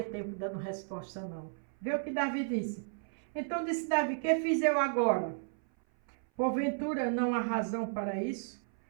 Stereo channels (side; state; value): left; silent; 55 dB below the other